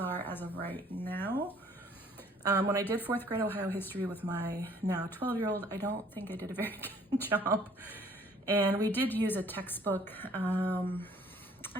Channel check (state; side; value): normal; both; correlation 0.58